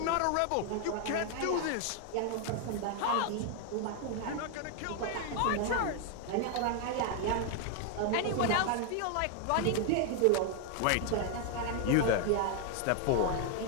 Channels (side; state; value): both; different; correlation 0.00